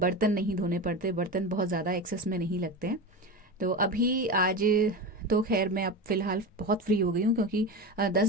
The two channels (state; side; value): normal; both; correlation 0.24